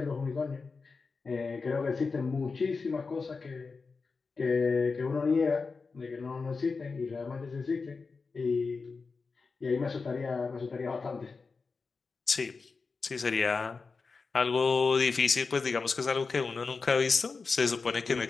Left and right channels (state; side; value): quieter; right; 4.5 dB